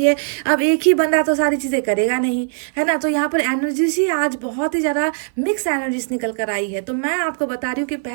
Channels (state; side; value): silent; left; 56 dB below the other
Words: अब एक ही बंदा तो सारी चीज़ें करेगा नहीं, है ना। तो यहाँ पर एनर्जीज ही आज बहुत ही ज़्यादा मिक्स एनर्जीज निकल कर आई है। तो मैं आपको बता रही हूँ कि